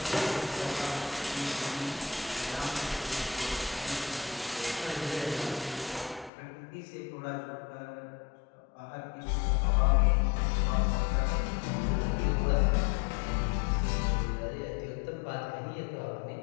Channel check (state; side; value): drops out; right; at 6.3 s